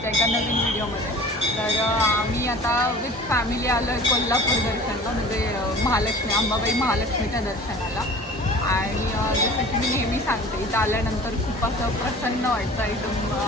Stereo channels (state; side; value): normal; both; correlation 0.43